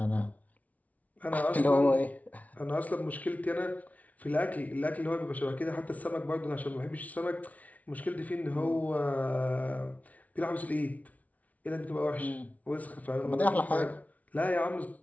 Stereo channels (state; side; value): late; right; 0.071 ms